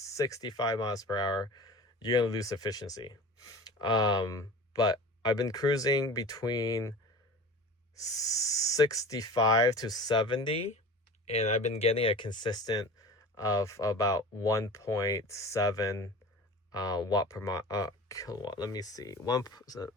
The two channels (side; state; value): both; normal; correlation 0.36